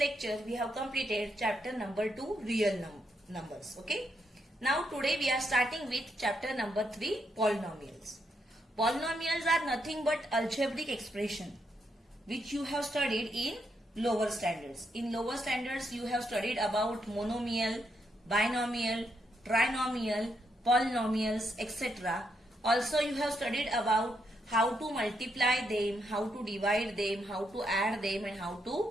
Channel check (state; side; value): normal; both; correlation 0.79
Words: we have completed chapter number 2, real numbers. Okay. Now today we are starting with chapter number 3, polynomials. Polynomials are nothing but algebraic expression which you have studied in lower standards. In lower standards, you have studied about monomial, binomial, trinomial, polynomials, etc. Also, you have studied about how to multiply them, how to divide them, how to add them and how